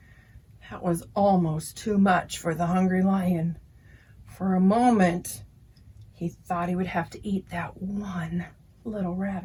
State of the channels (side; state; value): both; identical; correlation 1.00